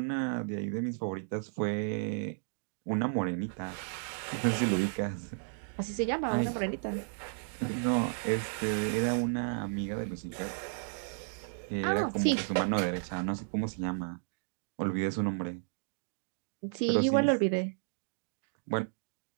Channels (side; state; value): left; silent; digital silence